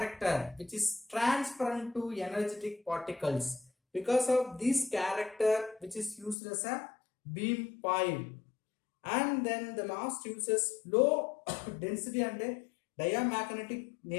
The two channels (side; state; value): right; drops out; at 6.4 s